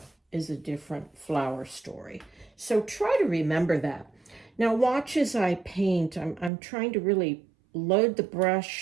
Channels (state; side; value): drops out; left; at 6.5 s